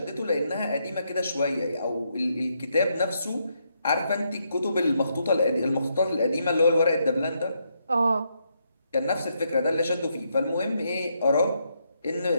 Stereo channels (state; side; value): inverted; both; correlation -0.78